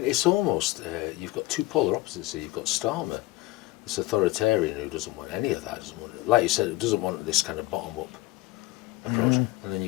it's almost you've got two polar opposites here. You've got Starmer, this authoritarian who doesn't want any of that, doesn't want, like you said, doesn't want this kind of bottom-up approach, and then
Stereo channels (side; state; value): right; quieter; 18.9 dB